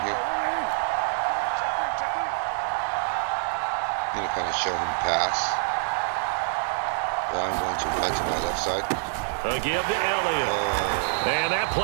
here. I'm going to kind of show him pass. But I'm going to run to my left side. A give to Elliott. And that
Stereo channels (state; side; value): silent; left; digital silence